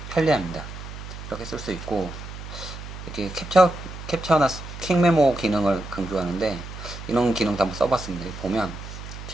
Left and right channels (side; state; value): right; noise; hum, 11 dB below the sound